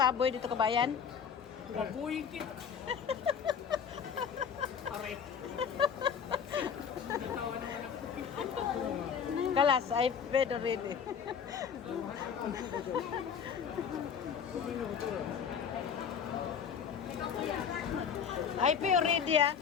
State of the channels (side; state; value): right; quieter; 7.2 dB